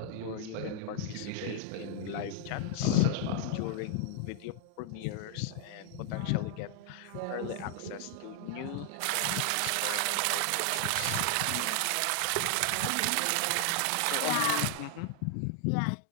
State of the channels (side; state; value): both; different; correlation 0.00